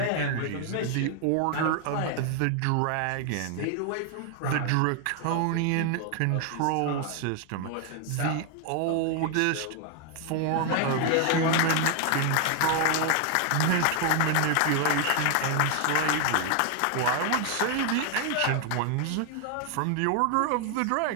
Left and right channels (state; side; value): different; both; correlation 0.00